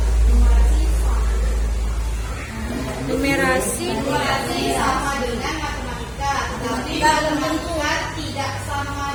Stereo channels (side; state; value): both; identical; correlation 1.00